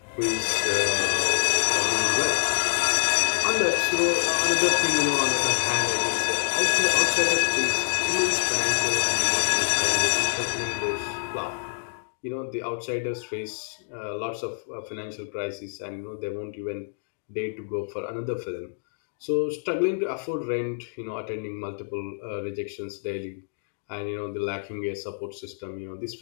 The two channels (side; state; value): right; silent; digital silence